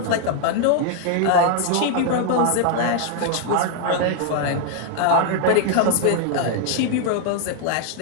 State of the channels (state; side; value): different; both; correlation 0.00